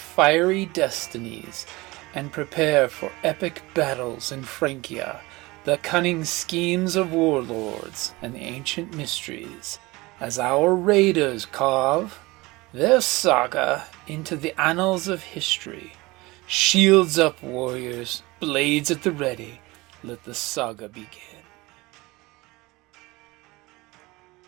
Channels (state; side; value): quieter; left; 22.0 dB